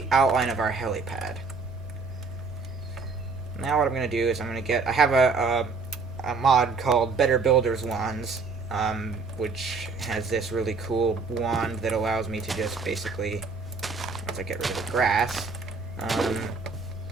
outline of our helipad. Now what I'm going to do is I'm going to get... I have a mod called Better Builder's Wands, which has this really cool wand that allows me to just basically, once I get rid of the grass,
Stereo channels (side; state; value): left; quieter; 4.4 dB